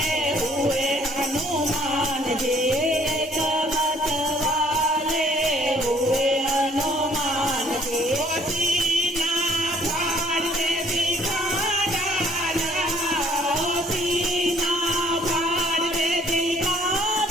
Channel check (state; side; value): normal; both; correlation 0.60